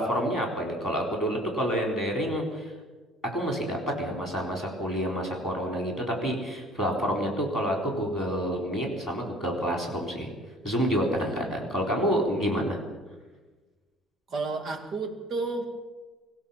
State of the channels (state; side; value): normal; both; correlation 0.51